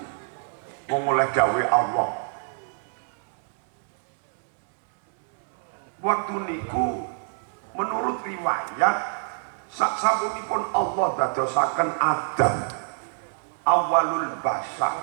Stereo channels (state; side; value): silent; left; 61 dB below the other